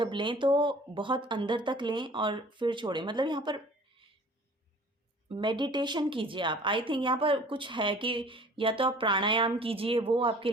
लें तो बहुत अंदर तक लें और फिर छोड़ें, मतलब यहाँ पर मेडिटेशन कीजिए आप। आई थिंक यहाँ पर कुछ है कि या तो आप प्राणायाम कीजिए, वो आपके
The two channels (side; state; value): both; normal; correlation 0.49